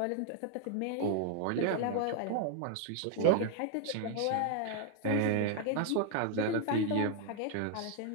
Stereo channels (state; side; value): different; both; correlation 0.00